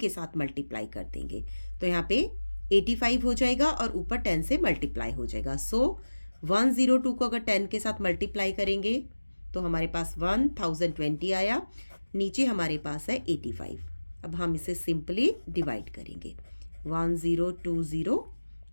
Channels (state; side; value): inverted; both; correlation -1.00